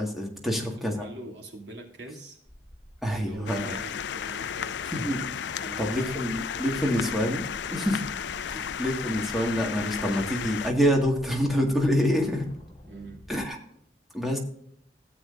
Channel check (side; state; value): both; normal; correlation 0.70